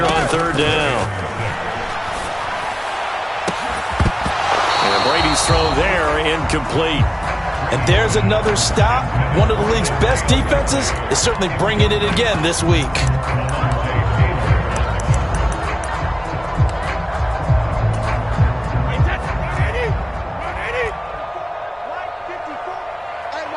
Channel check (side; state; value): both; identical; correlation 1.00